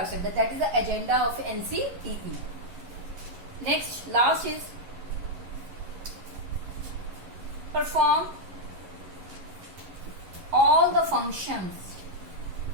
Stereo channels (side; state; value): left; late; 11 ms